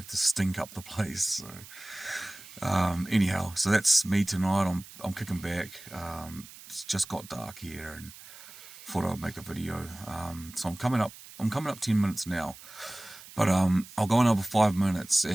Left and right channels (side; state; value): right; noise; hiss, 18 dB below the sound